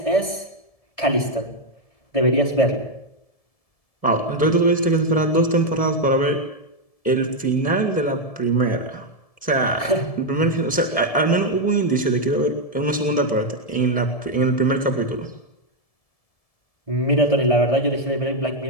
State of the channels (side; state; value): right; late; 1.7 ms